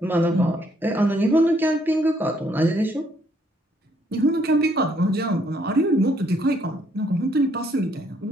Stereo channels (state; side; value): normal; both; correlation 0.68